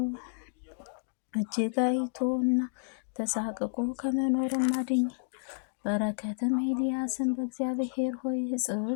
አይቶና ተሳቅቆ ከመኖርም አድኝ። በረከትም ኤልያስን በእግዚአብሔር ሆይ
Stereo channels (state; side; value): silent; right; digital silence